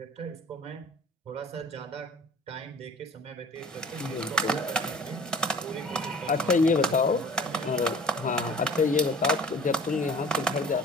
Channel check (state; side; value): normal; both; correlation 0.46